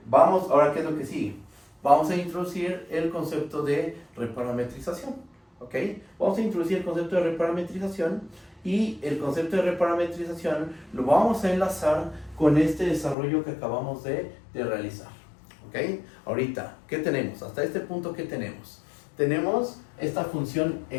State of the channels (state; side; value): drops out; right; at 13.2 s